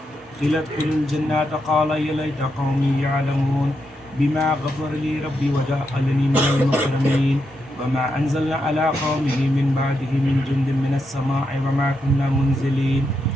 ادخلوا الجنة قال يا ليت قومي يعلمون بما غفر لي ربي وجعلني من المكرمين وما أنزلنا على قومه من بعده من جند من السماء وما كنا منزلين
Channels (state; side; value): normal; both; correlation 0.83